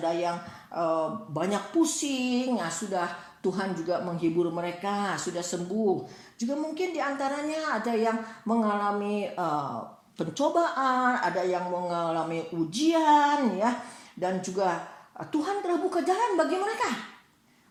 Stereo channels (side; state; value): both; identical; correlation 1.00